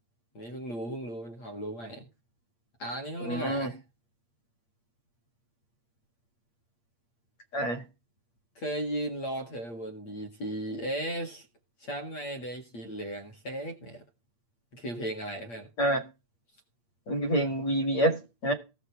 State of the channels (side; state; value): right; late; 8.6 ms